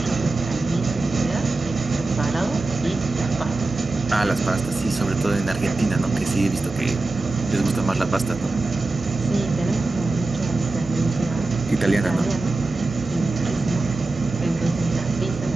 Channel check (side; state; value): left; quieter; 3.3 dB